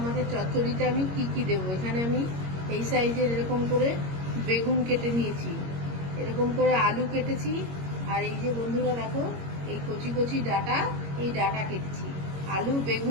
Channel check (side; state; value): left; late; 22 ms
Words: মাছের চচ্চড়িতে আমি কি কি দেবো। এখানে আমি এই সাইজের এরকম করে বেগুন কেটে নিয়েছি, এরকম করে আলু কেটেছি, আর এই যে বন্ধুরা দেখো এই কচি কচি ডাঁটা, এই ডাঁটা কেটেছি। আলু,